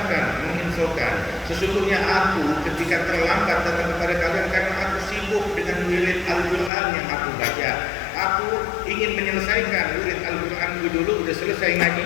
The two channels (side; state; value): right; drops out; at 6.7 s